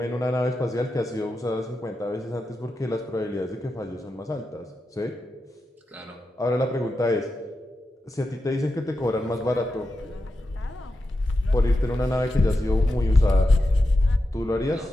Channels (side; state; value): both; normal; correlation 0.89